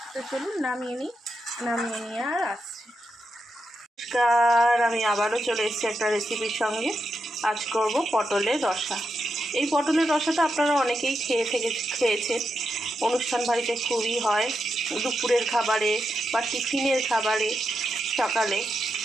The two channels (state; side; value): normal; both; correlation 0.86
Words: তো চলুন নামিয়ে নিয়ে আর আসছি। নমস্কার, আমি আবারও চলে এসেছি একটা রেসিপির সঙ্গে। আজ করব পটলের রসা। এই পটলের রসাটা আপনারা অনেকেই খেয়েছেন। অনুষ্ঠান বাড়িতে খুবই হয়, দুপুরের খাবারে বা টিফিনের খাবারে, সকালে।